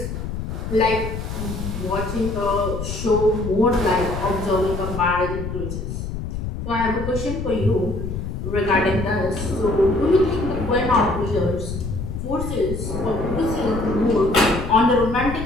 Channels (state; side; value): noise; left; rumble, 6 dB below the sound